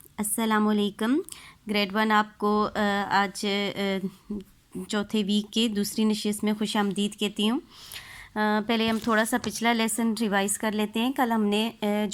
अस्सलामुअलैकुम। ग्रेड 1 आपको आज चौथे वीक के दूसरी नशिस्त में खुश आमदीद कहती हूँ। पहले हम थोड़ा सा पिछला लेसन रिवाइज़ कर लेते हैं। कल हमने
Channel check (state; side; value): identical; both; correlation 1.00